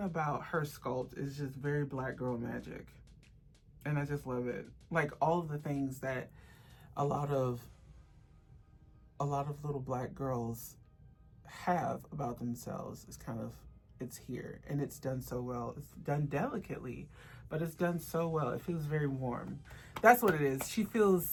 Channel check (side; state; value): both; identical; correlation 1.00